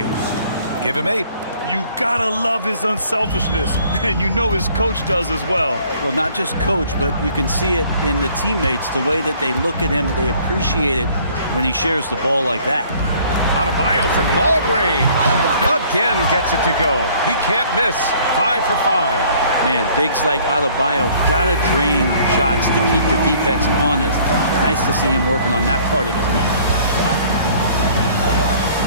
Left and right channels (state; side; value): inverted; both; correlation -0.56